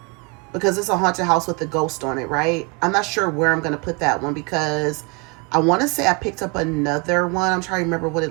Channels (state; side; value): quieter; left; 31.3 dB